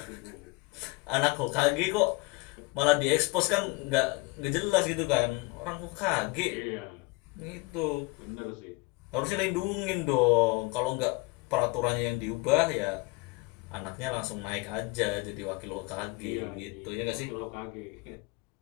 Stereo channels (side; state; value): right; quieter; 25.3 dB